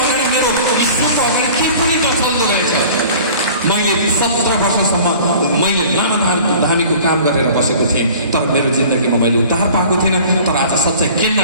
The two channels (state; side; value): inverted; both; correlation -0.45